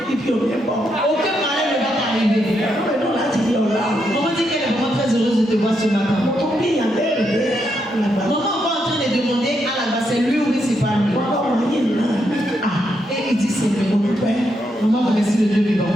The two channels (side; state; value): both; normal; correlation 0.80